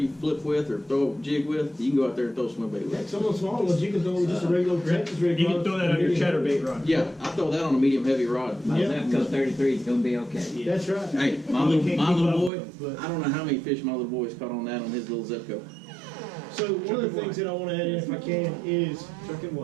flip with or throw a jig with, you can go out there and throw swim bait with. Some of the smaller ones you can throw with just a regular Texas rig. You can throw that on your chatterbait rod. Yeah, I throw that on a medium heavy rod. My Zepco 33 is going to be okay. Yeah. That's right. Hey, my little boy, I don't know how many fish my little boy's caught on that on his little Zepco. So one of the things that I want to add in, if I can, is Chuck and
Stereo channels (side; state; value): left; drops out; at 12.5 s